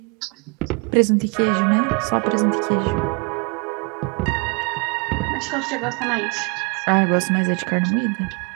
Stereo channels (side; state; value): left; quieter; 31.6 dB